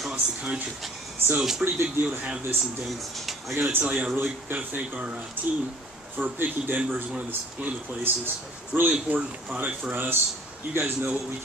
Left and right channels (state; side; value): normal; both; correlation 0.51